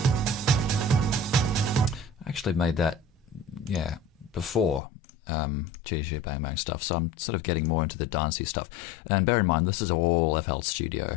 I actually made that, yeah, before GG Bang Bang stuff, so I'm sort of getting more into the dancey stuff. And bear in mind, this is all FL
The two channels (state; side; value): drops out; right; at 4.8 s